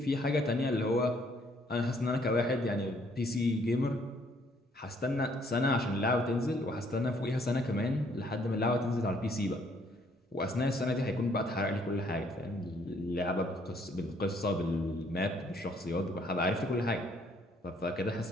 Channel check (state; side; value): normal; both; correlation 0.66